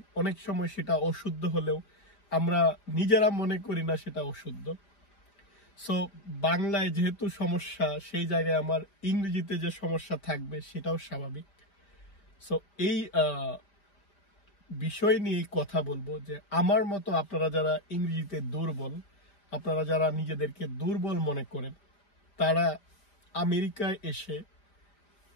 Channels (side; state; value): right; late; 5.0 ms